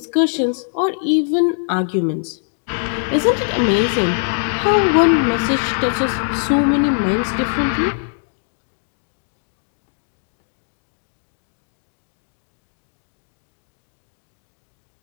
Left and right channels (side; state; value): right; silent; digital silence